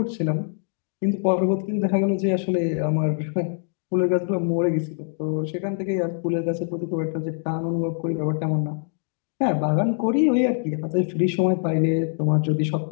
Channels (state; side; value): silent; right; digital silence